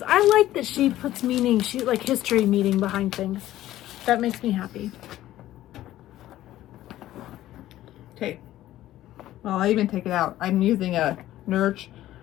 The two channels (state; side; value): quieter; right; 14.2 dB